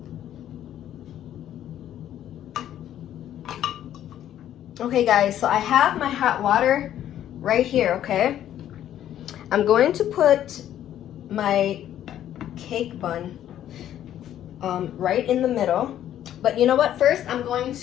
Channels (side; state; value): right; quieter; 11.4 dB